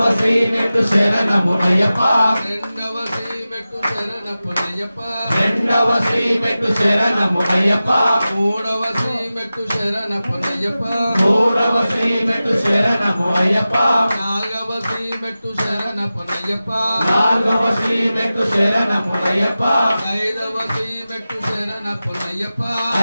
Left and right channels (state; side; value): inverted; both; correlation -0.95